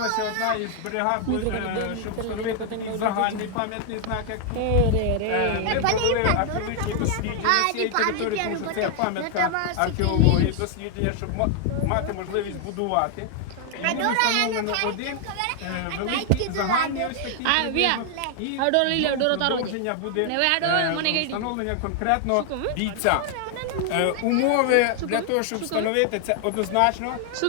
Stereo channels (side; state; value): both; different; correlation 0.00